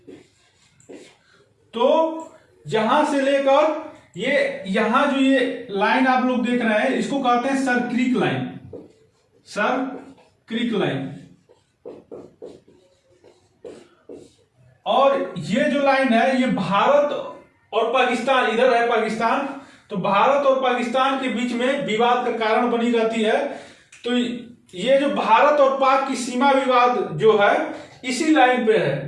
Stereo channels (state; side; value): identical; both; correlation 1.00